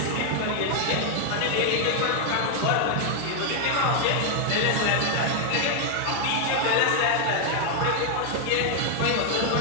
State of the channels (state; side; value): different; both; correlation 0.01